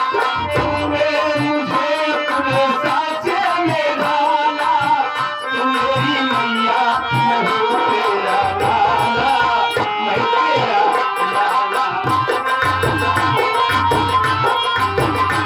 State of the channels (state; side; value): identical; both; correlation 1.00